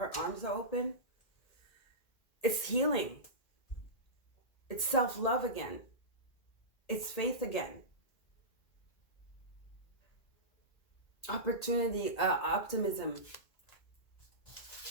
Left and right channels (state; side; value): late; right; 1.8 ms